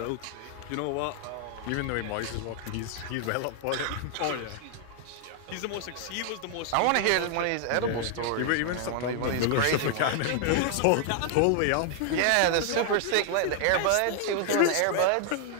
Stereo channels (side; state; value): both; different; correlation 0.00